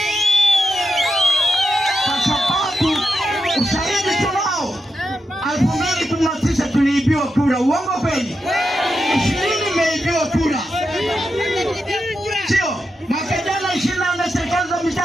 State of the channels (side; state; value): both; normal; correlation 0.87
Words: Kwa sababu ushahidi tunao, 2019 tuliibiwa kura. Uongo kweli? 20 imeibiwa kura. Sio mwaka jana 24 serikali za